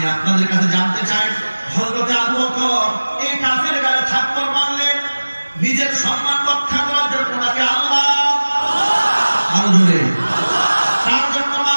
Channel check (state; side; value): inverted; both; correlation -1.00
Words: আপনাদের কাছে জানতে চাই, হযরত আবু বকর এই কাফের গায়ে থাপ্পড় মারলেন নিজের সম্মান রক্ষা করার জন্য নাকি আল্লাহ আরো জোরে তার জন্য